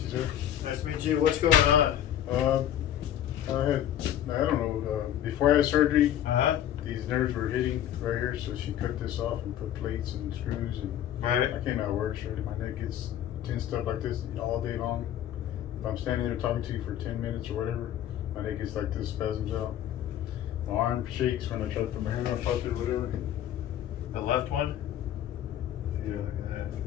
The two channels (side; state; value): right; quieter; 11.2 dB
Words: sir. Nice to meet you. What's going on? I don't know, before I had surgery, Uh-huh. these nerves were hitting right here, so she cut this off and put plates and screws, and Right. I came out of work straight. My neck gets tensed up like this all day long. If I'm standing there talking to you for 10 minutes or whatever, my neck gets like this, spasms out. My arm shakes when I try to put my hand on pocket or whatever. The left one? Yeah,